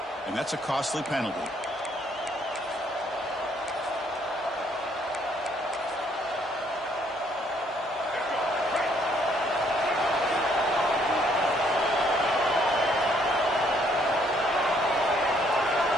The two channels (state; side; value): normal; both; correlation 0.67